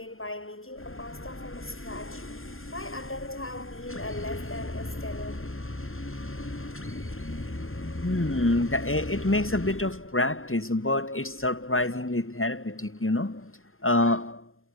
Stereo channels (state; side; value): late; right; 0.60 ms